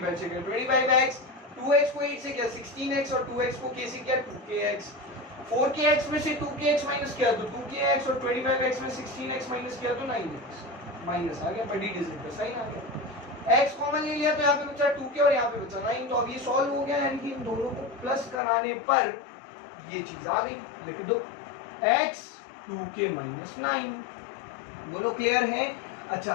से किया 25x, 2x को 8 से किया 16x, और 2x को k से किया 2kx। 4kx में से 2kx माइनस किया तो 2kx, और 25x में 16x माइनस किया तो 9x। माइनस आ गया, बड़ी डिजिट पे साइन आ गया। x कॉमन ले लिया तो यहाँ पे बचा 2k और यहाँ पे बचा 9। तो अब ये सॉल्व हो गया, यानी कि इन दोनों को प्लस कराने पर ये चीज आ गई। लिख दो x 2k माइनस 9। बोलो क्लियर है। अच्छा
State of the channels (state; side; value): drops out; right; at 18.4 s